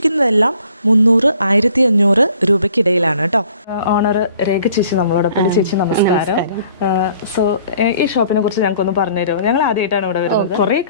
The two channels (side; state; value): both; inverted; correlation -0.57